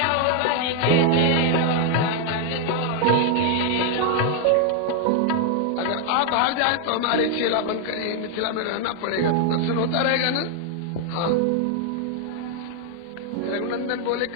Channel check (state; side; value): different; both; correlation 0.00